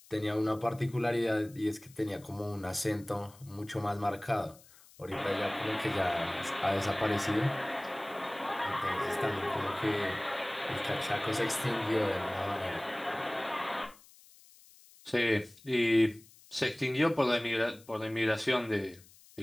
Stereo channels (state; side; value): noise; left; hiss, 24 dB below the sound